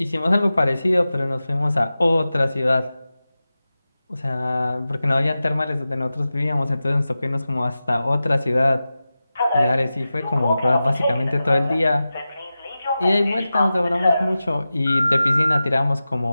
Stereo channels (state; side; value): inverted; both; correlation -0.94